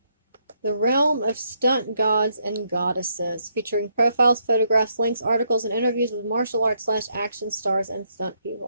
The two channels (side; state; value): both; inverted; correlation -0.74